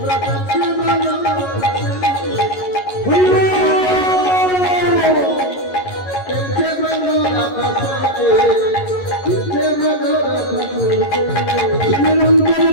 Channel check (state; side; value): late; right; 11 ms